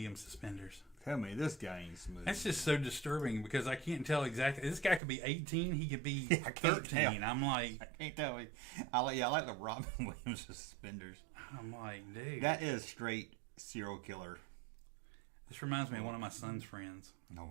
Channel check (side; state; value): left; drops out; at 5.0 s